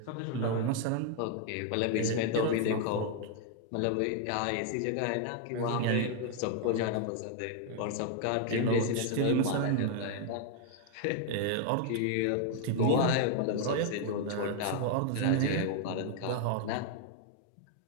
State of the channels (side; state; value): both; different; correlation 0.00